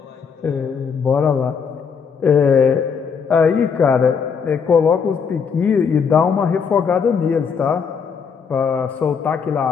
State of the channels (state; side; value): quieter; right; 6.2 dB